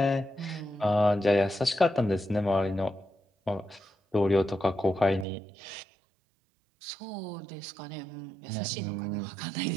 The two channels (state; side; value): drops out; left; at 5.2 s